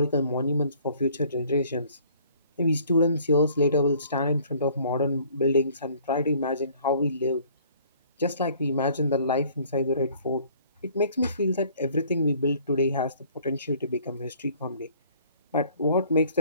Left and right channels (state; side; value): inverted; both; correlation -0.57